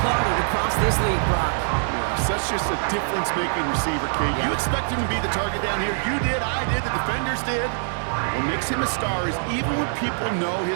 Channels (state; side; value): silent; left; digital silence